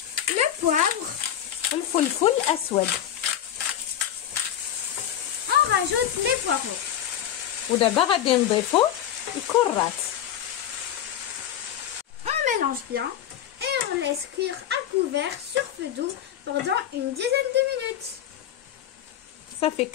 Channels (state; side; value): quieter; right; 10.5 dB